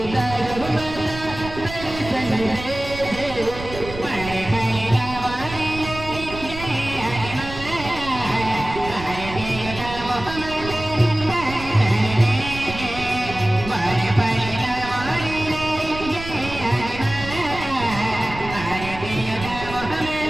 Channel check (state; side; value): noise; right; rumble, 11 dB below the sound